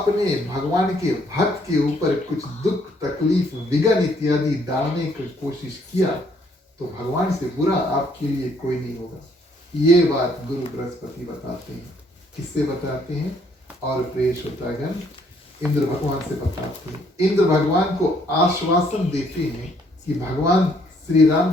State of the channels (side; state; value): both; normal; correlation 0.67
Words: भगवान के भक्त के ऊपर कुछ दुख तकलीफ विघ्न इत्यादि डालने की कोशिश किया तो भगवान से बुरा आपके लिए कोई नहीं होगा। ये बात गुरु बृहस्पति बताते हैं। किससे बताते हैं? और प्रिय श्रोतागण, इंद्र भगवान से बताते हैं। इंद्र भगवान को आश्वासन देते हैं कि भगवान श्री